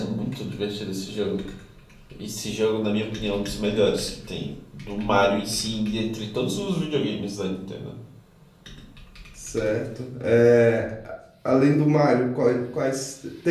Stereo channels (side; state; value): both; identical; correlation 1.00